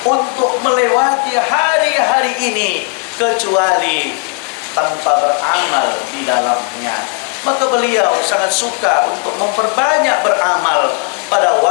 untuk melewati hari-hari ini kecuali tanpa beramal di dalamnya. Maka beliau sangat suka untuk memperbanyak beramal pada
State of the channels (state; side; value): quieter; right; 34.6 dB